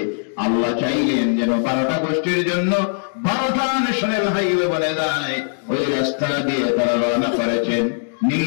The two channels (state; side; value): silent; right; digital silence